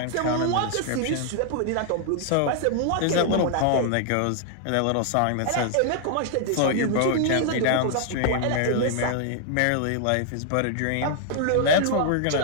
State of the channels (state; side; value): different; both; correlation 0.00